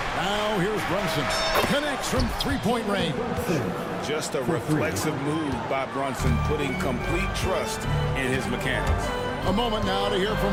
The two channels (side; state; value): both; identical; correlation 1.00